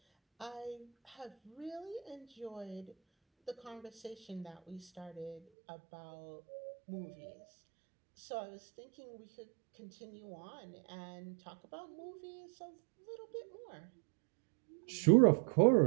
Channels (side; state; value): left; drops out; at 5.4 s